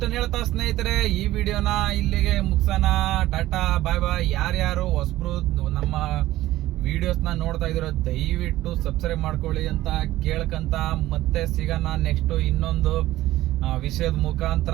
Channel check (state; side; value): quieter; left; 15.7 dB